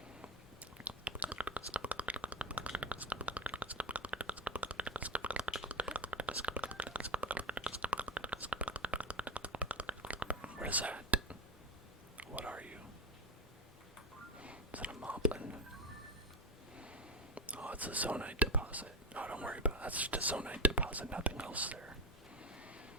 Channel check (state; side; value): normal; both; correlation 0.16